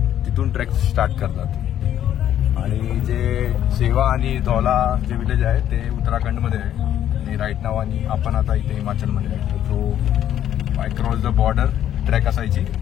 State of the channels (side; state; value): right; quieter; 10.9 dB